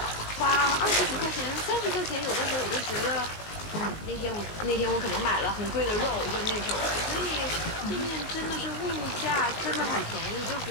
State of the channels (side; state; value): right; late; 19 ms